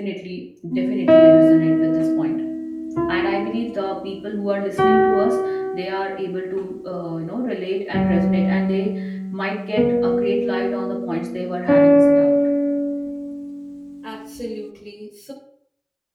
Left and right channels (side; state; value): both; identical; correlation 1.00